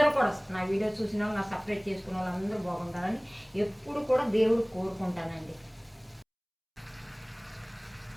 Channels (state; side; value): identical; both; correlation 1.00